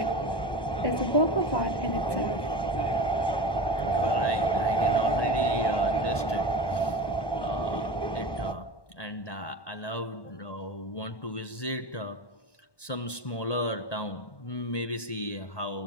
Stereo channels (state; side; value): late; right; 1.2 ms